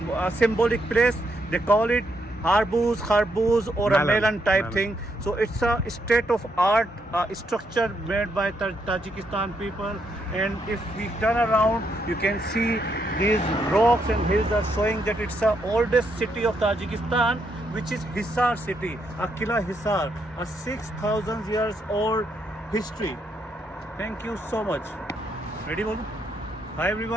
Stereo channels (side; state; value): both; normal; correlation 0.77